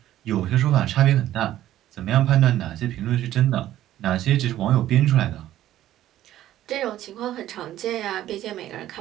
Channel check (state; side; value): quieter; left; 13.2 dB